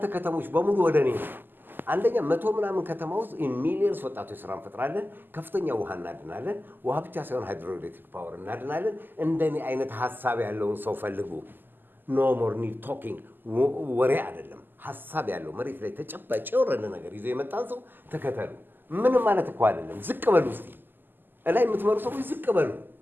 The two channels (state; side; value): late; left; 0.091 ms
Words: ከተሞች በሙሉ ወደ እኔ ነው። አንደኛ 100 ምናምን ከተማ ውስጥ ሚሊዮንስ ወጣቶች ስራ እንፈጥራለን። ከፍተኛ ውሃ እናድናለን። ውሃ ብቻ ሳይሆን ሃይድሮኤሌክትሪክ ፓወር እናድናለን። እንደኔ አይነት ሀሳብ ያለውን ሰው ፈልጉ። ኖ ሞር ኒድ ቶኪንግ፣ ወሬ አይደለም፣ ሀሳብ ያለው መሬት ላይ ተጨባጭ የወረደ ነገር ይዞ የመጣን ሰው ተከተሉ። ምንም ማለት እኮ አይደለም። ዝቅ በሉ እስቲ፣ እላይ የምትመሩ ሰዎች ዝቅ በሉ።